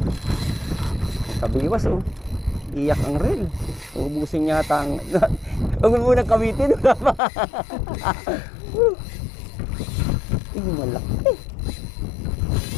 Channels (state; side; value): drops out; right; at 7.2 s